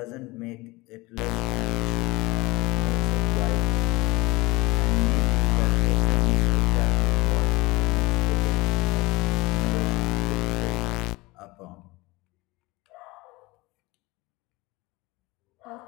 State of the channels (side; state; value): right; quieter; 22.3 dB